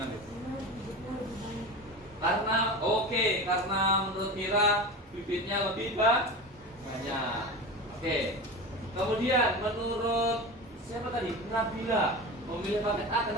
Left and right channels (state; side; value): normal; both; correlation 0.28